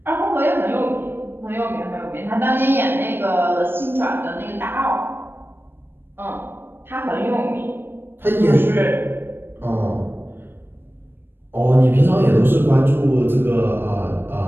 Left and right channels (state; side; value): late; left; 0.10 ms